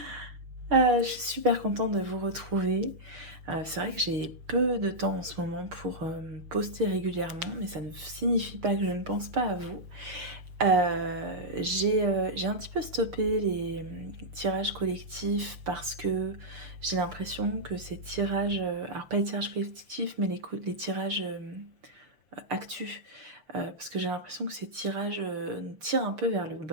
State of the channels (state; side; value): late; left; 6.4 ms